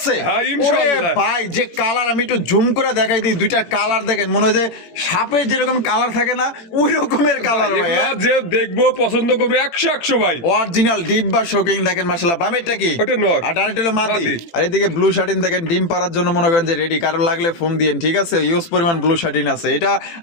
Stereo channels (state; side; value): late; right; 18 ms